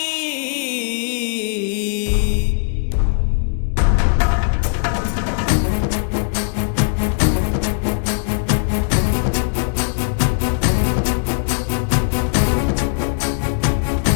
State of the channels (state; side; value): silent; right; 67 dB below the other